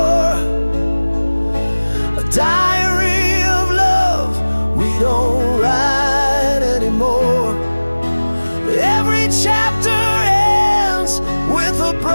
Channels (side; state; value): both; inverted; correlation -1.00